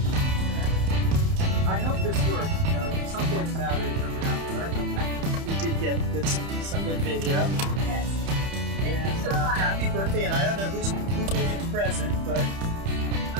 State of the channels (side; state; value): left; late; 30 ms